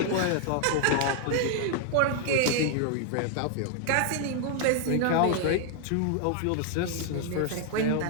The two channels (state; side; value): different; both; correlation 0.00